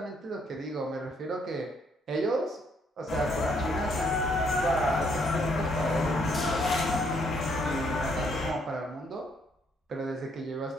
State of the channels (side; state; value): both; normal; correlation 0.70